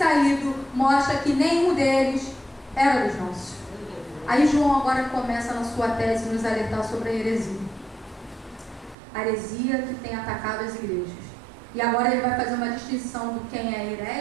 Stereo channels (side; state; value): left; drops out; at 9.0 s